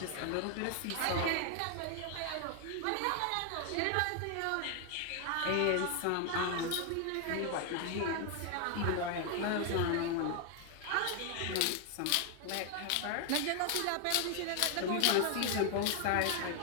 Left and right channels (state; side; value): different; both; correlation 0.00